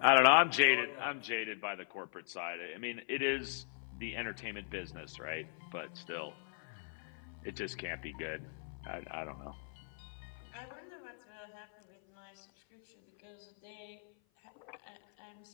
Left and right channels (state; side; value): silent; right; 52 dB below the other